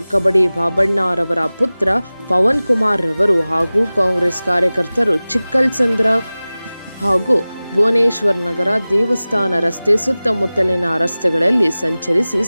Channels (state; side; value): inverted; both; correlation -0.98